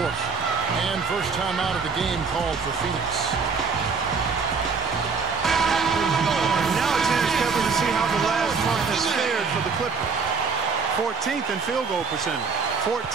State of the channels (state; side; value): quieter; left; 5.0 dB